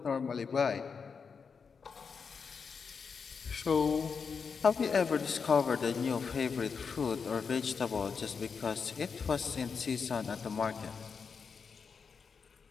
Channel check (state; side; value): quieter; right; 5.7 dB